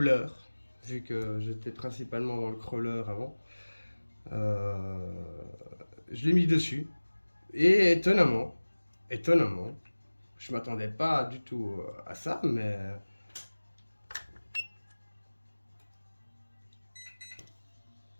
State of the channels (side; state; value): both; inverted; correlation -1.00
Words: vu que j'étais principalement dans le crawler avant. Euh, je l'ai mis dessus. Et étonnamment, je m'attendais pas du tout à ça, mais